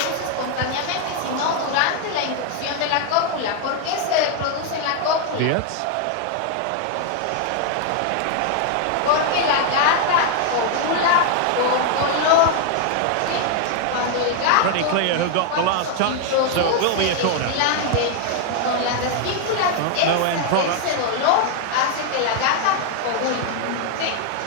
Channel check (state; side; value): different; both; correlation 0.00